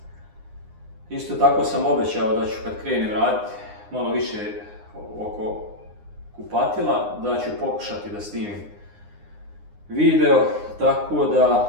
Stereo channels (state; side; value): late; left; 9.7 ms